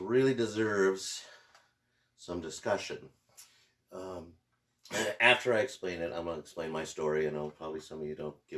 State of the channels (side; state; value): both; identical; correlation 1.00